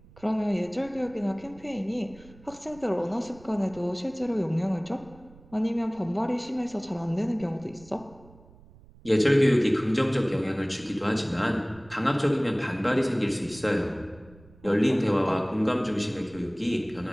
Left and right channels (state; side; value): noise; right; rumble, 24 dB below the sound